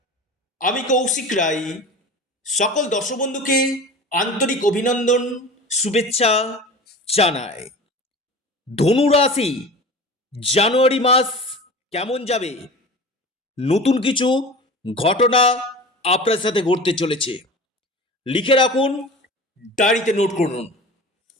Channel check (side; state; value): both; normal; correlation 0.36